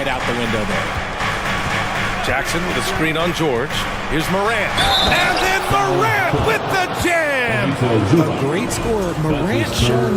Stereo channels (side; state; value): both; identical; correlation 1.00